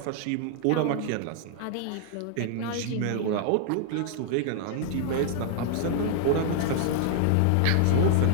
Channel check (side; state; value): both; different; correlation -0.01